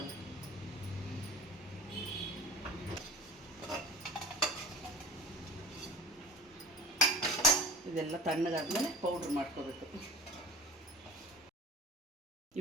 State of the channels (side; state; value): both; normal; correlation 0.40